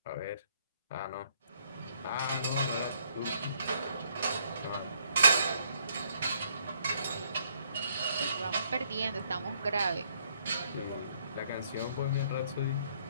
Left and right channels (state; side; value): inverted; both; correlation -0.68